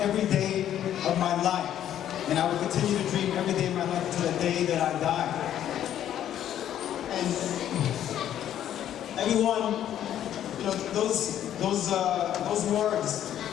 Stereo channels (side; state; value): right; quieter; 10.9 dB